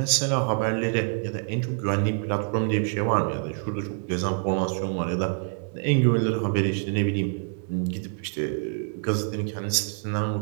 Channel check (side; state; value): left; silent; 61 dB below the other